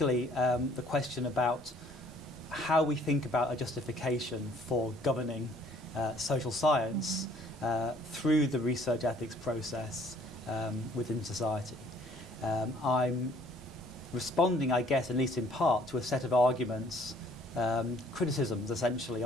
the question about how we think about a justification for governing social science through the research ethics process within society. I'm responding, I guess, at least in part, to a set of arguments, criticisms essentially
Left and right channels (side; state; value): both; normal; correlation 0.59